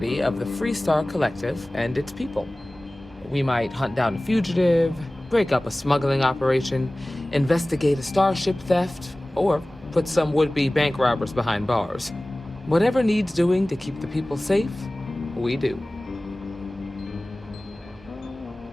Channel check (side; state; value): both; normal; correlation 0.98